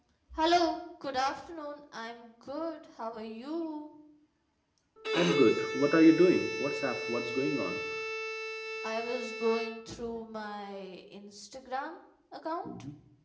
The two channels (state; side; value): identical; both; correlation 1.00